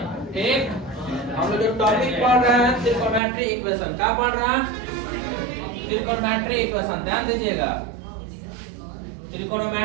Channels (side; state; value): left; drops out; at 3.2 s